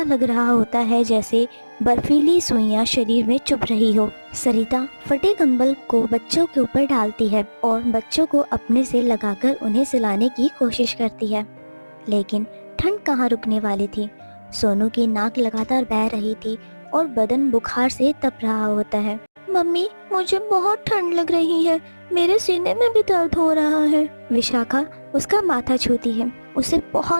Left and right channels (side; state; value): both; inverted; correlation -1.00